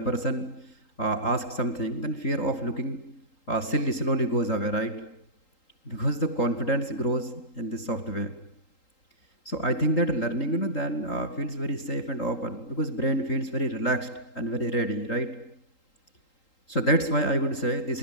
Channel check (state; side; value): late; right; 3.8 ms